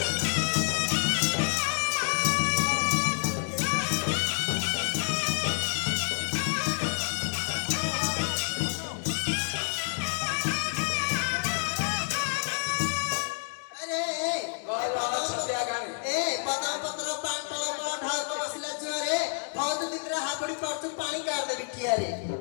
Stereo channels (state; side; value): silent; right; digital silence